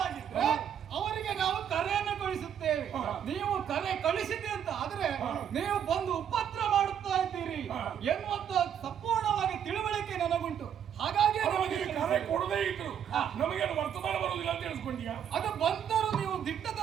ಅವರಿಗೆ ನಾವು ಕರೆಯನ್ನು ಕಳಿಸುತ್ತೇವೆ. ನೀವು ಕರೆ ಕಳಿಸಿದೆ ಅಂತ ಆದ್ರೆ ನೀವು ಬಂದು ಉಪದ್ರ ಮಾಡುತ್ತಾ ಇದ್ದೀರಿ ಎನ್ನುವಂತ ಸಂಪೂರ್ಣವಾಗಿ ತಿಳುವಳಿಕೆ ನನಗುಂಟು. ಹಾಗಾಗಿ ನಮಗೆ ಕರೆ ಕೊಡದೇ ಇದ್ರು ನಮಗೇನು ವರ್ತಮಾನ ಬರುವುದಿಲ್ಲ ಅಂತ ತಿಳಿಸ್ಕೊಂಡ್ಯಾ? ಅದು ಬಂದರೂ ನೀವು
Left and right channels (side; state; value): left; quieter; 8.8 dB